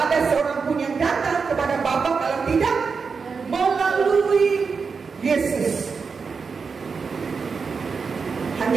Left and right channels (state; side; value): quieter; left; 5.2 dB